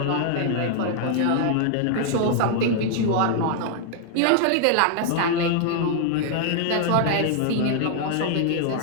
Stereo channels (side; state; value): both; different; correlation 0.00